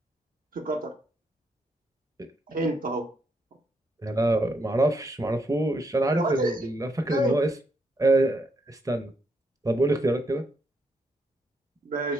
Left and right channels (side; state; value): both; normal; correlation 0.77